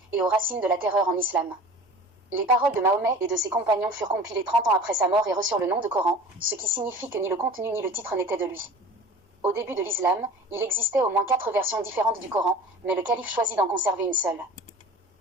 et aux racines de la terreur en islam. Les paroles de Mahomet et de ses compagnons furent compilées 30 ans après sa mort et reçurent le nom de Coran, ce qui signifie que ni le contenu ni le titre n'étaient de lui. Au début de l'islam, il existait au moins 4 versions différentes du Coran, mais le calife choisit d'en conserver une seule.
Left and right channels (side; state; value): both; normal; correlation 0.41